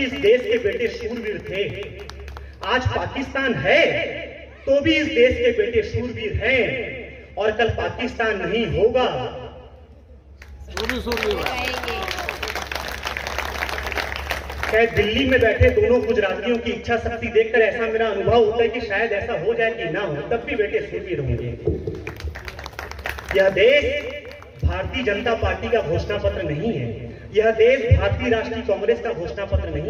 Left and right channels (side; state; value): both; identical; correlation 1.00